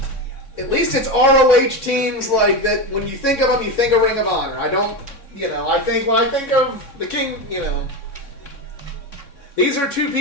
ROH teams like that. When you think of them, you think of Ring of Honor. I don't, you know, I think of the King, you know. These are two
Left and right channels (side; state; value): right; late; 3.6 ms